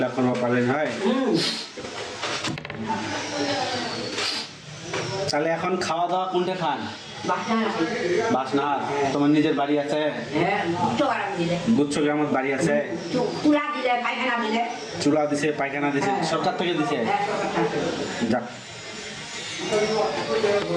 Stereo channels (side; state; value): both; identical; correlation 1.00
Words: পাবেন হয়। তাহলে এখন খাওয়া দাওয়া কোনটা খান? বাসনার। তোমার নিজের বাড়ি আছে? গুচ্ছ গ্রামের বাড়ি আছে? চুলা দিছে, পায়খানা দিছে, সরকার থেকে দিছে। যাক